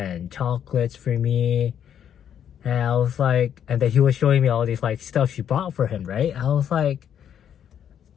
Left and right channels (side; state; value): right; quieter; 9.2 dB